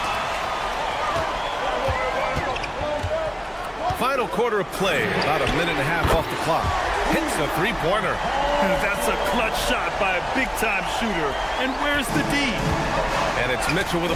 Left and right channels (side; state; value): both; identical; correlation 1.00